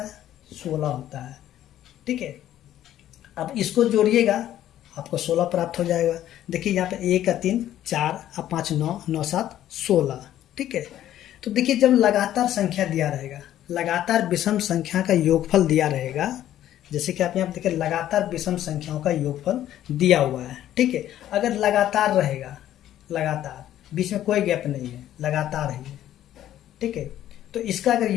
16 होता है। ठीक है, अब इसको जोड़िएगा आपको 16 प्राप्त हो जाएगा। देखिए यहाँ पे 1 का 3 4 और 5 9, 9 7 16। ठीक है, तो देखिए जब लगातार संख्या दिया रहेगा, लगातार विषम संख्या का योगफल दिया रहेगा, जैसे कि आप यहाँ देखिए लगातार विषम संख्याओं का योगफल दिया हुआ है। ठीक है, अगर लगातार रहेगा, लगातार बीच में कोई गैप नहीं है, लगातार है। ठीक है, तो इसका अगर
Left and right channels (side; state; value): right; quieter; 12.2 dB